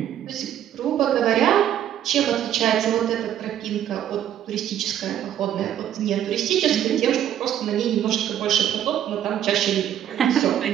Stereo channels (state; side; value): quieter; left; 10.7 dB